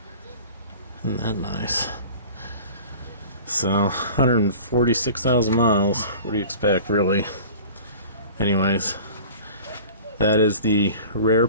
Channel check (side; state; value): both; inverted; correlation -0.42